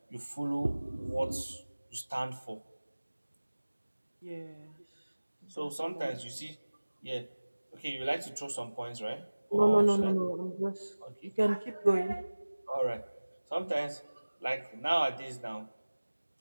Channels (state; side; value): inverted; both; correlation -1.00